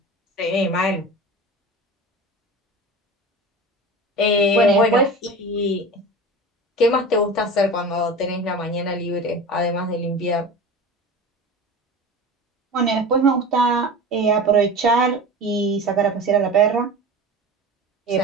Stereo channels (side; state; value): both; normal; correlation 0.33